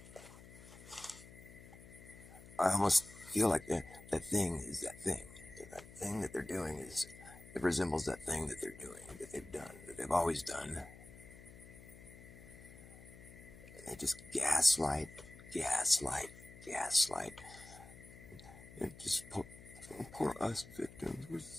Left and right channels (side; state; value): left; noise; hum, 18 dB below the sound